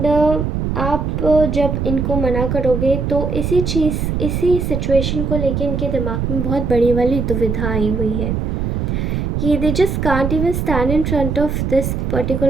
आप जब इनको मना करोगे तो इसी सिचुएशन को लेके इनके दिमाग में बहुत बड़ी वाली दुविधा आई हुई है कि they just can't even stand in front of this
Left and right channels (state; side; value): noise; right; rumble, 1 dB below the sound